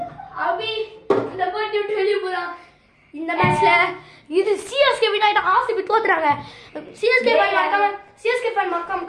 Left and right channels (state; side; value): identical; both; correlation 1.00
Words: அபி இந்த போட்டி விட்டு வெளிய போறான் இந்த மேட்ச்ல இது சிஎஸ்கே வின் ஆயிட்டு ஆர்சிபி தோத்துறாங்க சிஎஸ்கே ஃபேன் மறக்காம